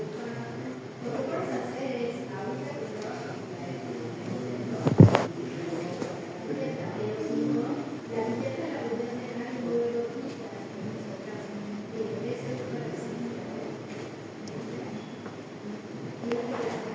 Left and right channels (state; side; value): identical; both; correlation 1.00